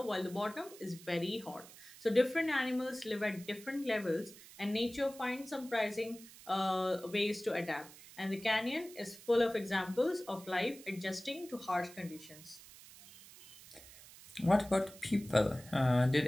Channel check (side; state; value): right; noise; hiss, 19 dB below the sound